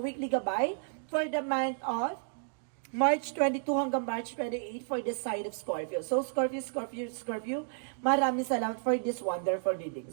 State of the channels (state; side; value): silent; left; digital silence